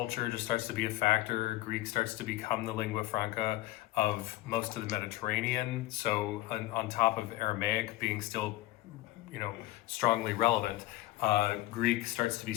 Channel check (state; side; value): quieter; right; 16.9 dB